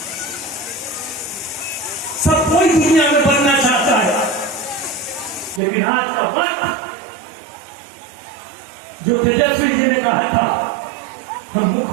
सब कोई दुनिया में बनना चाहता है, लेकिन आज का वक्त जो तेजस्वी जी ने कहा था हम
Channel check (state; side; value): drops out; left; at 5.6 s